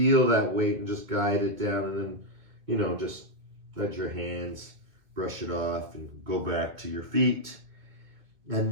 that weight and just guide it down. And then, just let your hands brush it off and go back to your feet.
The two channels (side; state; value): left; late; 2.1 ms